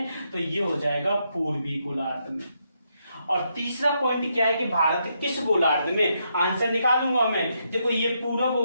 तो ये हो जाएगा पूर्वी गोलार्ध में। और तीसरा पॉइंट क्या है कि भारत किस गोलार्ध में? आंसर निकालूंगा मैं। देखो ये पूरब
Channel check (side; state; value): both; inverted; correlation -0.79